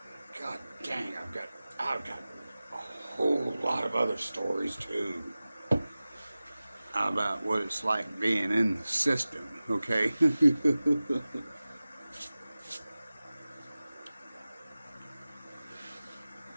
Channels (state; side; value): inverted; both; correlation -0.97